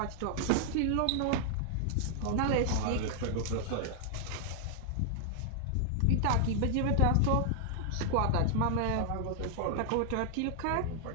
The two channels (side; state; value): both; different; correlation 0.00